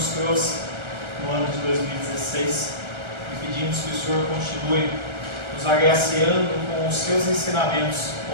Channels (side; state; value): left; late; 1.4 ms